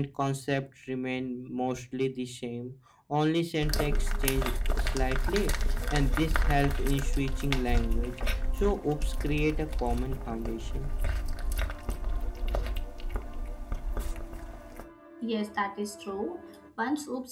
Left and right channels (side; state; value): both; identical; correlation 1.00